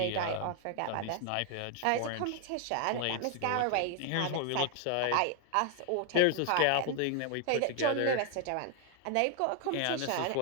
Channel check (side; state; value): both; different; correlation 0.00